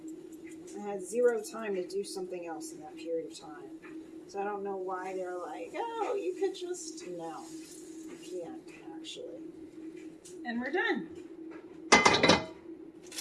I had zero time to do something else in that period of time. So I don't know why they're like, oh, you could just... No. Can't actually. And we're done.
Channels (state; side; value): identical; both; correlation 1.00